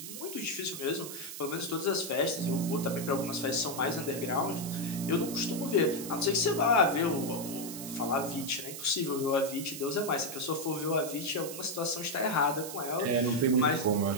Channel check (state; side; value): noise; right; hiss, 9 dB below the sound